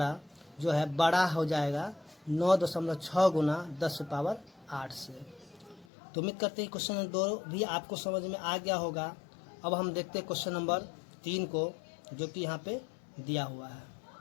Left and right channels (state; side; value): drops out; right; at 5.9 s